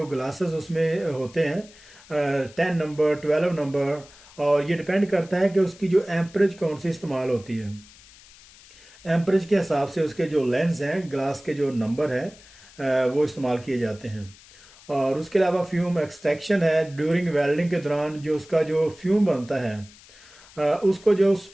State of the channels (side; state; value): left; noise; hiss, 23 dB below the sound